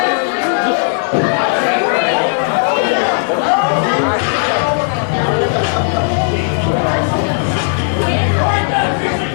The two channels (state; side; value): silent; right; digital silence